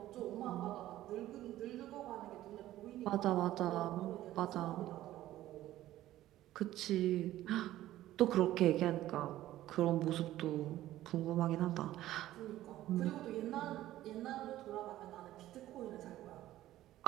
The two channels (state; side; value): quieter; left; 14.4 dB